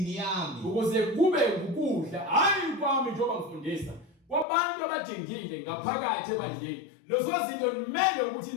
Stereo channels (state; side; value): drops out; right; at 4.5 s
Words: yami. ukuze kube ukudla hayi kwami njengoba ngifundisa kwabantu abadingile ngaphakathi ebandleni lezo zinto nimele ukuthi